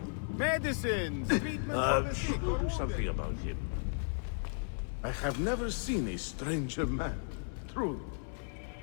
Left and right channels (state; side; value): silent; right; digital silence